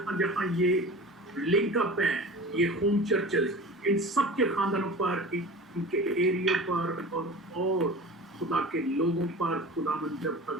जहाँ ये लिंक अप है, ये होम चर्चेस, इन सब के खानदानों पर, इनके एरिया पर और खुदा के लोगों पर, खुदावन जब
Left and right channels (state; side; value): normal; both; correlation 0.36